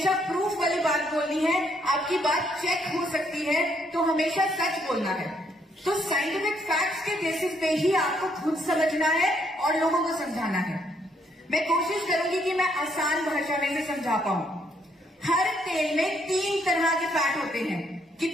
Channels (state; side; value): normal; both; correlation 0.71